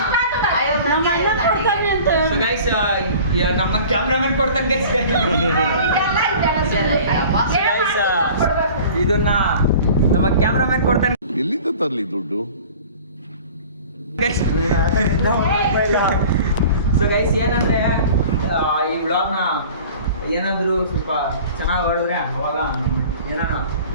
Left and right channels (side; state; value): both; inverted; correlation -0.44